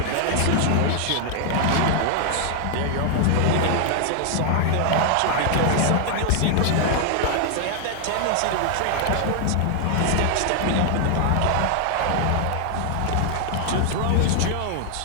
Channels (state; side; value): different; both; correlation 0.00